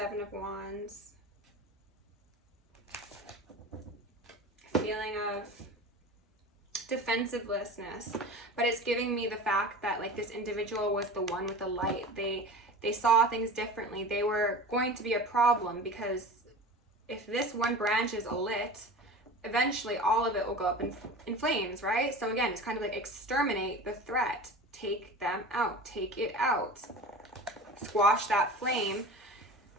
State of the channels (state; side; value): normal; both; correlation 0.34